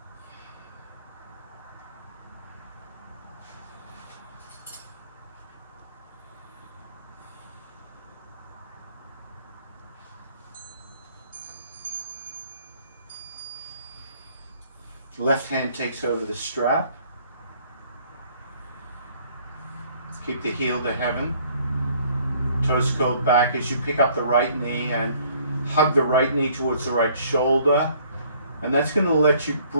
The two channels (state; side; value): inverted; both; correlation -0.59